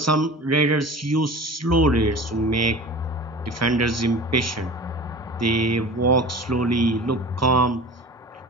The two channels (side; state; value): both; normal; correlation 0.37